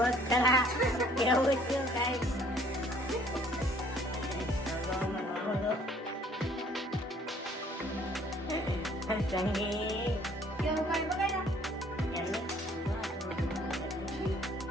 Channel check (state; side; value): normal; both; correlation 0.58